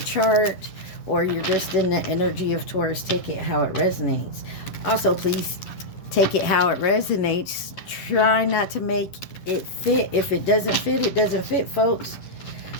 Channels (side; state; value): right; late; 11 ms